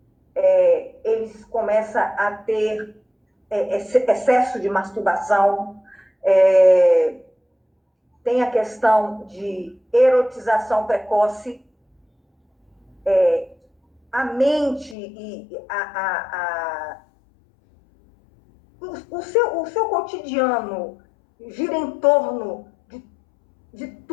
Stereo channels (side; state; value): right; drops out; at 15.0 s